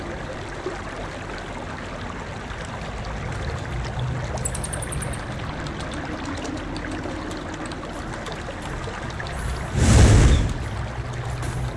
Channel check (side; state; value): both; identical; correlation 1.00